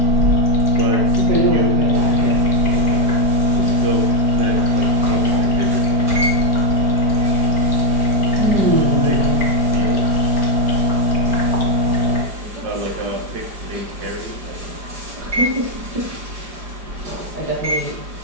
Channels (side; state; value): left; late; 4.9 ms